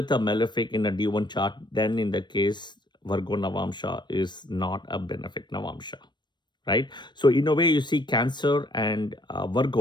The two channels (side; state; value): right; late; 0.22 ms